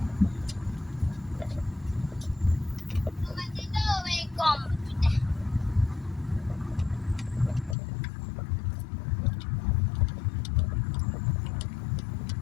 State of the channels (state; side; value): drops out; right; at 7.8 s